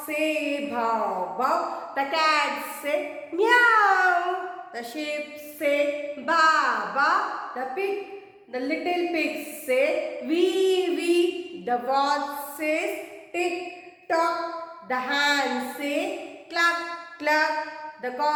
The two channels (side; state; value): both; identical; correlation 1.00